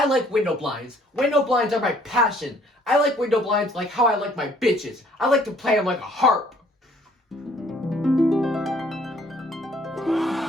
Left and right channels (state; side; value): normal; both; correlation 0.60